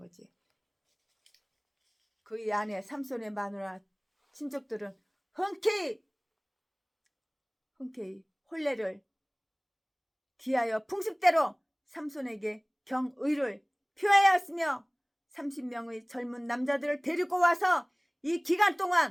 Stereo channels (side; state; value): both; identical; correlation 1.00